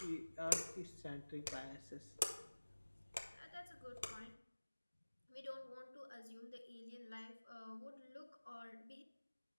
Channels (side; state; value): both; inverted; correlation -1.00